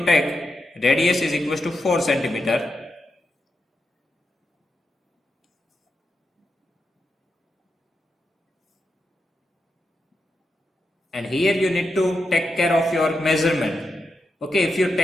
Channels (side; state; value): both; normal; correlation 0.87